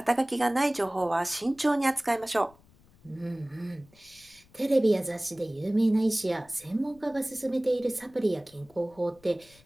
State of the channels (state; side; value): noise; left; rumble, 28 dB below the sound